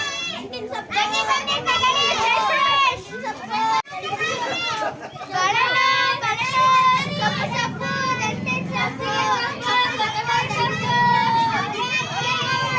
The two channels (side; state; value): both; identical; correlation 1.00